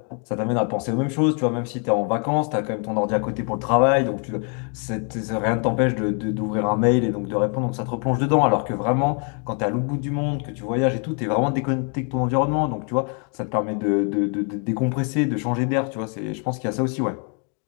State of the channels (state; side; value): quieter; right; 39.4 dB